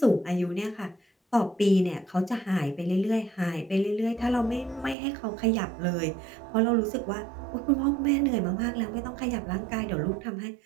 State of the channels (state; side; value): drops out; left; at 5.0 s